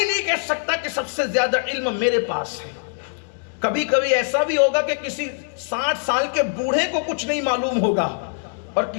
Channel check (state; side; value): silent; right; digital silence